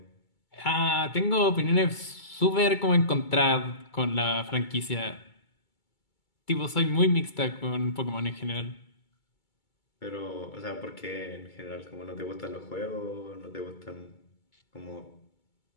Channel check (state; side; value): late; right; 2.2 ms